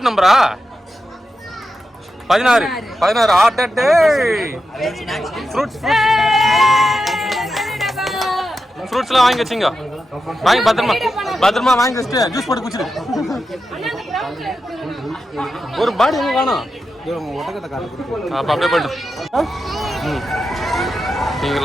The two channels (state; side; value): normal; both; correlation 0.89